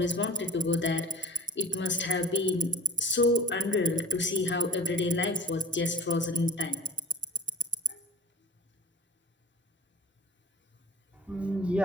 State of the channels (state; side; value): normal; both; correlation 0.39